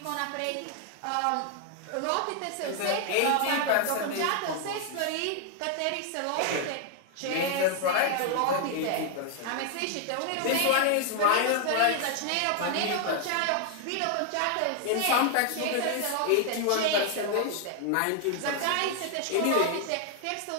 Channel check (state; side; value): different; both; correlation 0.00